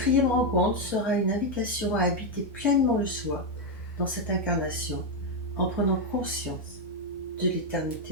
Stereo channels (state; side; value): normal; both; correlation 0.03